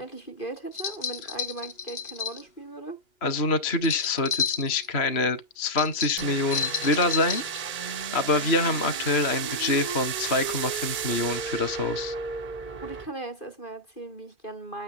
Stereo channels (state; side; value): late; right; 2.4 ms